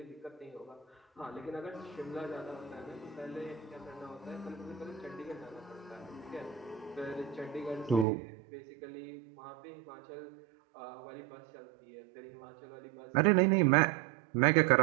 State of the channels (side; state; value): left; drops out; at 8.1 s